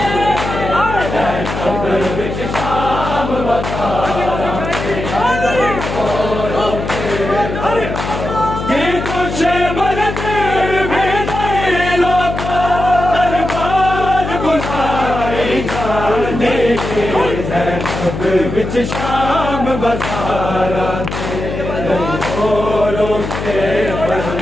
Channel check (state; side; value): noise; left; hum, 6 dB below the sound